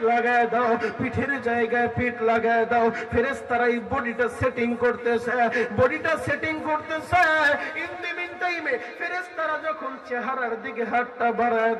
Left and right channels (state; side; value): identical; both; correlation 1.00